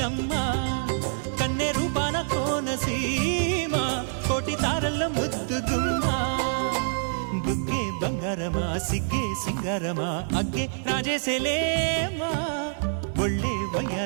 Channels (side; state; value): left; silent; digital silence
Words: కన్నె రూపాన కోనసీమ కోటి తారల్లో ముద్దుగుమ్మా బుగ్గే బంగారమా సిగ్గే సింగారమా అగ్గే రాజేసేలేమా ఒళ్ళే